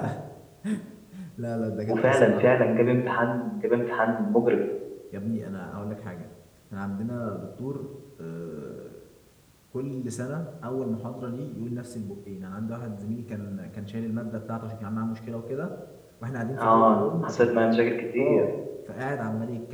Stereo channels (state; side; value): identical; both; correlation 1.00